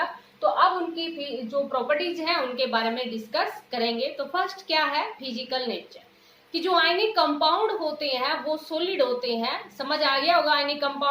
तो अब उनकी जो प्रॉपर्टीज हैं उनके बारे में डिस्कस करेंगे। तो फर्स्ट क्या है, फिजिकल नेचर, कि जो आयनिक कंपाउंड होते हैं वो सॉलिड होते हैं। समझ आ गया होगा आयनिक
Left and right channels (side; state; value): both; identical; correlation 1.00